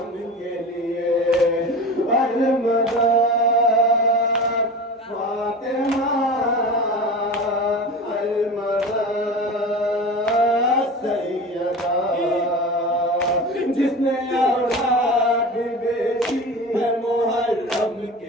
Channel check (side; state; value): both; normal; correlation 0.32